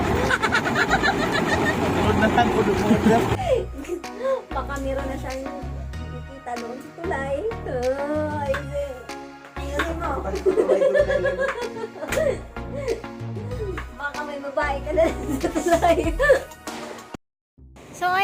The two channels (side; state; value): both; identical; correlation 1.00